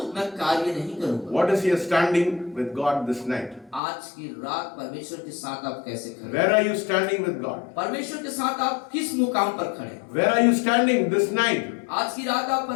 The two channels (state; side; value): drops out; right; at 3.8 s